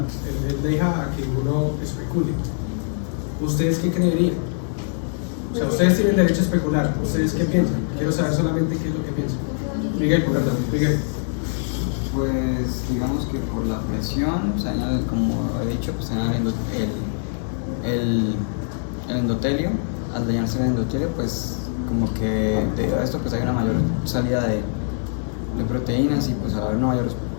Él deja a que uno especule. ¿Ustedes qué creerían? O sea, ustedes tienen derecho a especular. ¿Ustedes qué piensan? Quiero saber solamente qué es lo que piensan. Miguel, perdón, Miguel. Pues digamos que por la presión, o sea, como he dicho, pues el endotelio, al dañarse el endotelio, pues como que debido a esto pues hay una mayor salida de proteínas y pues al haber una mayor...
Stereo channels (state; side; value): silent; right; 55 dB below the other